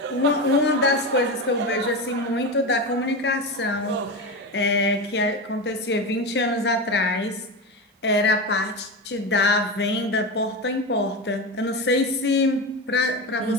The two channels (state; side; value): normal; both; correlation 0.20